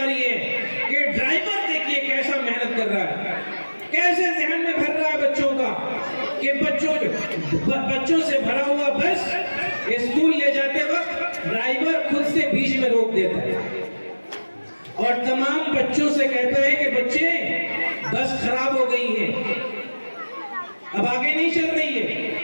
है कि ड्राइवर देखिए कैसा मेहनत कर रहा है, कैसे जहन में भर रहा है बच्चों का कि बच्चों से भरा हुआ बस स्कूल ले जाते वक्त ड्राइवर खुद से बीच में रोक देता है और तमाम बच्चों से कहता है कि बच्चे बस खराब हो गई है, अब आगे नहीं चल रही है।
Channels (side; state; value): both; inverted; correlation -1.00